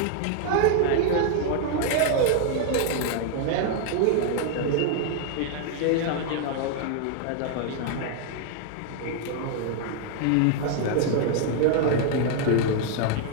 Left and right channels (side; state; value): both; different; correlation 0.00